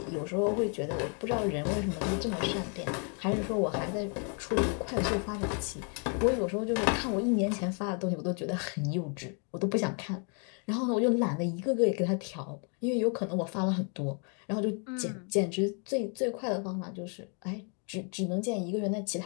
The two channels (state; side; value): quieter; right; 39.6 dB